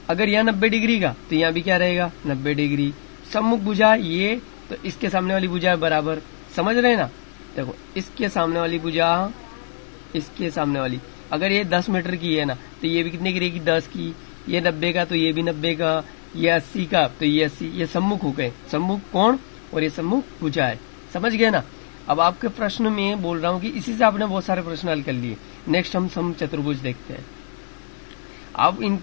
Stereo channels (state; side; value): silent; right; digital silence